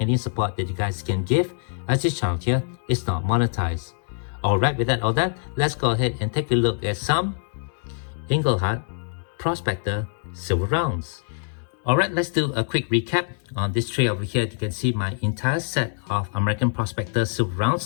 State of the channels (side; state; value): right; silent; 62 dB below the other